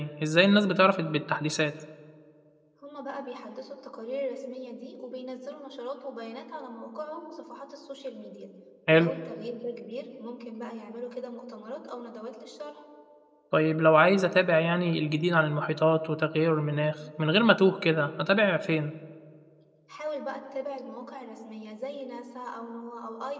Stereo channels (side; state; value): both; identical; correlation 1.00